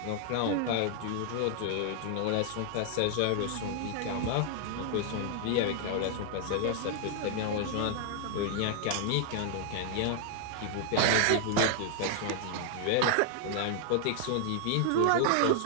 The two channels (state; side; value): different; both; correlation 0.00